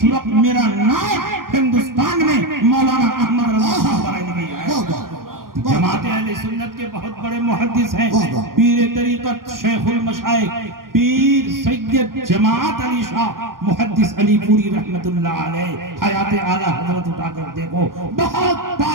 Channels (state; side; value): late; left; 0.91 ms